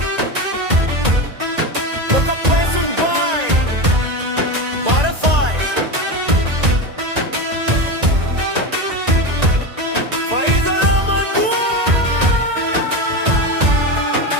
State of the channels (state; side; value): late; left; 1.9 ms